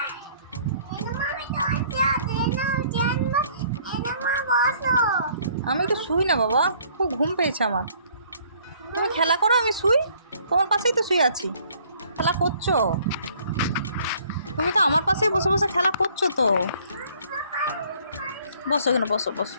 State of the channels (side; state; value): both; inverted; correlation -0.59